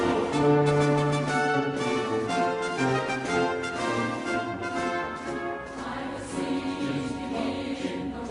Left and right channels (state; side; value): identical; both; correlation 1.00